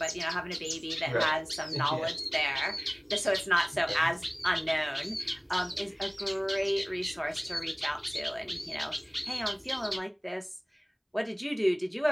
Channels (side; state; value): both; identical; correlation 1.00